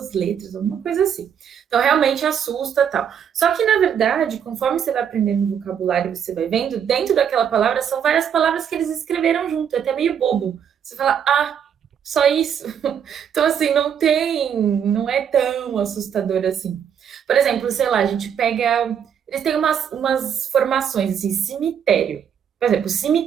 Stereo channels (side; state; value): left; quieter; 8.3 dB